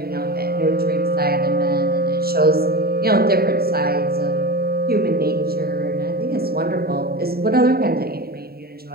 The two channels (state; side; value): late; left; 0.45 ms